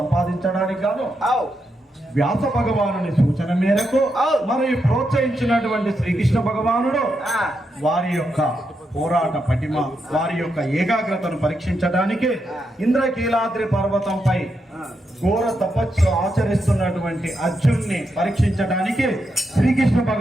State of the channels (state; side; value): normal; both; correlation 0.83